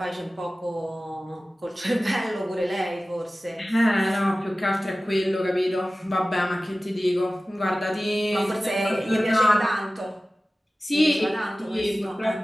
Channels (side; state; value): both; normal; correlation 0.96